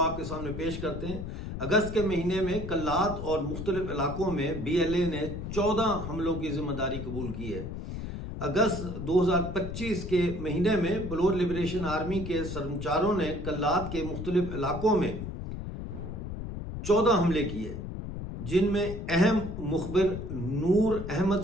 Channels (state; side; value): noise; left; rumble, 7 dB below the sound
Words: آپ کے سامنے پیش کرتے ہیں۔ اگست کے مہینے میں کلات اور مختلف علاقوں میں BLA نے 14 حملوں کی ذمہ داری قبول کی ہے۔ اگست 2025 کے مہینے میں بلوچ لبریشن آرمی کے سرمچاروں نے کلات کے مختلف علاقوں میں 14 حملے کیے، جن میں اہم مخبر نور